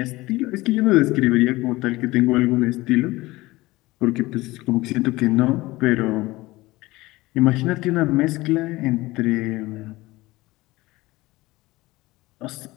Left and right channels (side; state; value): right; quieter; 19.8 dB